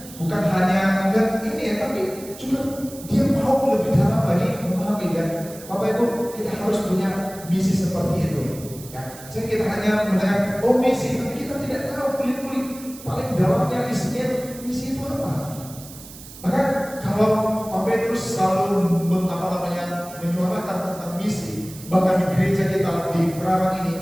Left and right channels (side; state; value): right; noise; hiss, 17 dB below the sound